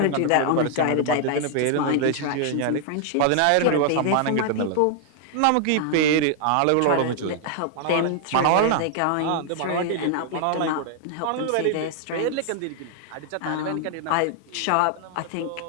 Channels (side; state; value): both; different; correlation 0.00